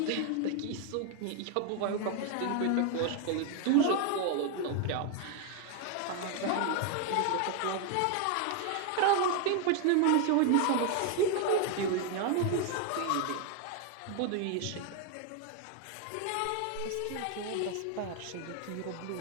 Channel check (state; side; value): different; both; correlation 0.01